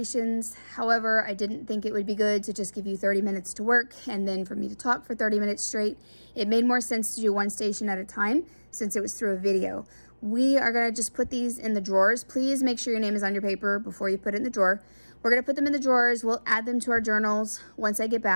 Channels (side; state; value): both; inverted; correlation -1.00